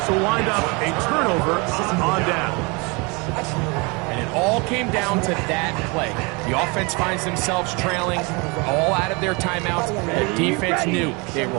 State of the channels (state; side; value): quieter; left; 28.8 dB